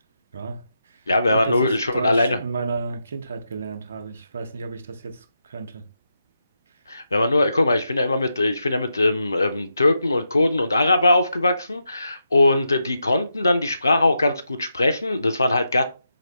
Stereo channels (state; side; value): inverted; both; correlation -0.85